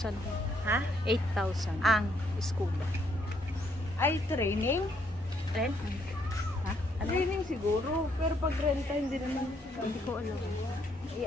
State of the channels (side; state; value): both; normal; correlation 0.71